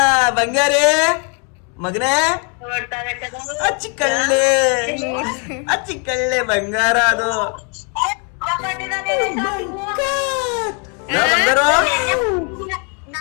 ಬಂಗಾರಿ ಮಗನೇ, ಅಚ್ಚಿಕಳ್ಳೆ ಬಂಗಾರ ಅದು. ಬಂಗಾರ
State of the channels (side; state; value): right; quieter; 37.6 dB